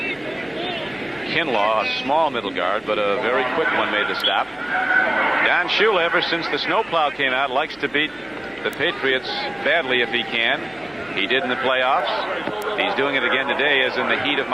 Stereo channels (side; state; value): left; noise; hum, 30 dB below the sound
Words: Kinlaw, a small middle guard, but a very quick one, made the stop. Don Shula, ever since the snowplow came out, likes to beat the Patriots badly if he can. He did in the playoffs. He's doing it again today, as in the heat of